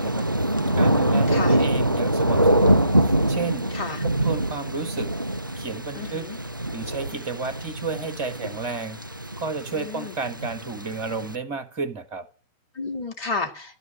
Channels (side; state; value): both; inverted; correlation -0.67